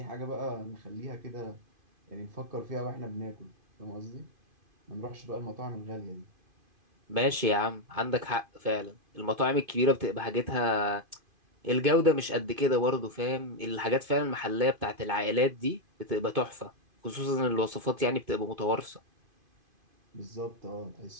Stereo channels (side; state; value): left; late; 2.5 ms